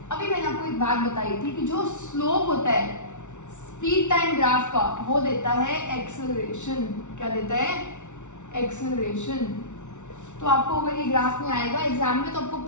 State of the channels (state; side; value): late; right; 0.84 ms